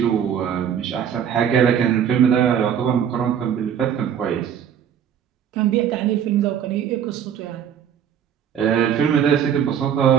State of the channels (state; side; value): quieter; left; 8.7 dB